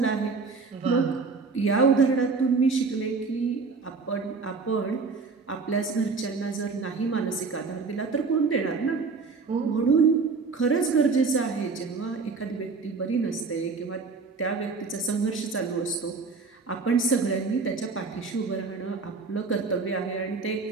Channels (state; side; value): quieter; left; 4.5 dB